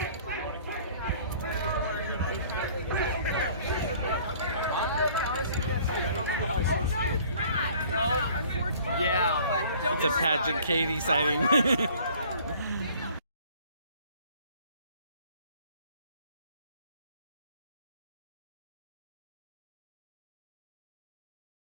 Yeah. It's a Paget Kagy sighting.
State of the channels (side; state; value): both; inverted; correlation -0.53